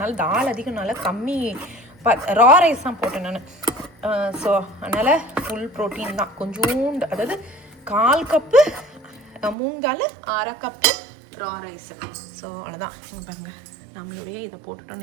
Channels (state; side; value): drops out; left; at 9.6 s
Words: தால் அதிகம்னால கம்மி ரா ரைஸ் தான் போட்டேன் நான். ஸோ அதனால் ஃபுல் ப்ரோட்டீன் தான். கொஞ்சோண்டு, அதாவது 1/4 கப்பு மூங்கால், 1/2 கப்பு ரா ரைஸு. ஸோ அவ்வளோதான். இங்கே பாருங்கள், நம்மளுடைய இதை